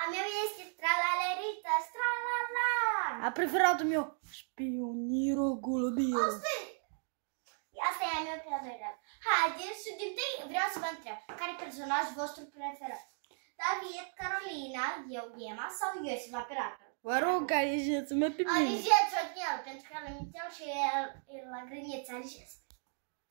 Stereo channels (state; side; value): silent; left; 54 dB below the other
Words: A meu este Tralalerită, Stralala. A preferatul meu, Spioniro Golubiro. Asta e a meu preferat. Haideți și din tâi vreau să vă întreb. Care e personajul vostru preferat? David, Carolina, eu, Ghema sau Iosif, operator? Vă rog, alegeți-mă pe mine. Alegeți-o din el, pentru că l-am inițial și el la grăniță, alegeți.